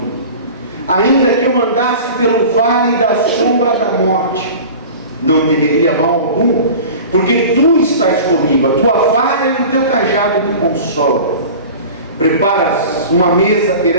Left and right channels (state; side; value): inverted; both; correlation -0.38